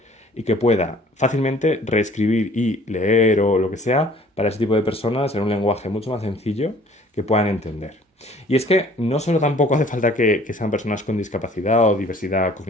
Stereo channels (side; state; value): both; normal; correlation 0.54